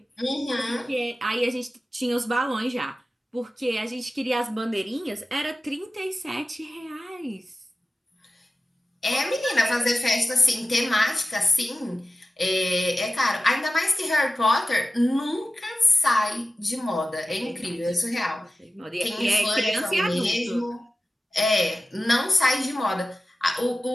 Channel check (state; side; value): normal; both; correlation 0.95